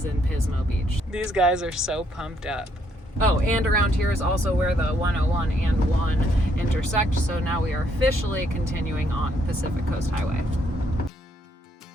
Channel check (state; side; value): normal; both; correlation 0.71